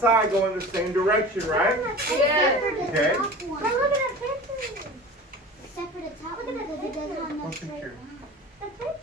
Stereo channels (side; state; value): both; normal; correlation 0.37